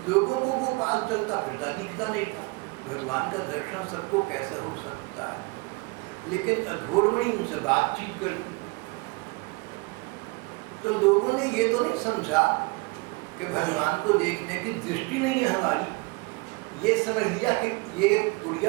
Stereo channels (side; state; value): left; quieter; 26.4 dB